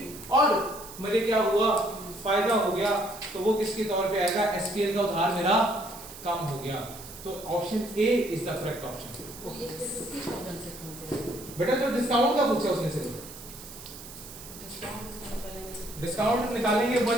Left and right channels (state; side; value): noise; right; hiss, 15 dB below the sound